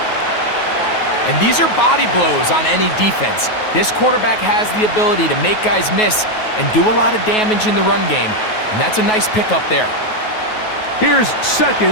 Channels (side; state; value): right; late; 9.3 ms